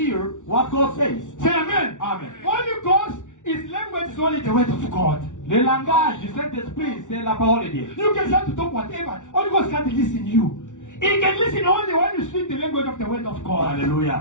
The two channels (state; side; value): late; right; 0.86 ms